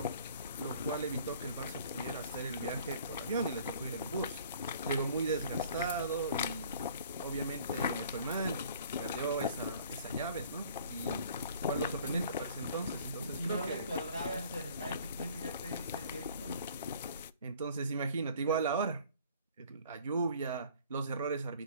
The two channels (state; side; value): inverted; both; correlation -0.52